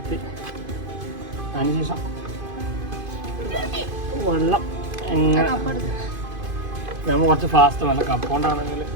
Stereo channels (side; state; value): left; late; 2.5 ms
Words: അതിനുശേഷം വെള്ളം എങ്ങനെ നമ്മൾ കുറച്ച് ഫാസ്റ്റ് വേണം. കപ്പൗണ്ടാണെങ്കിൽ